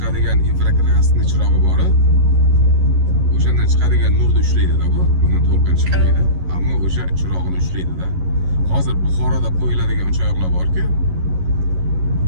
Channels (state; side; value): late; left; 11 ms